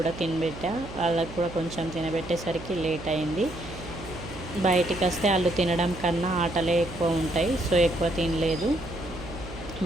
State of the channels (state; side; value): noise; right; hum, 13 dB below the sound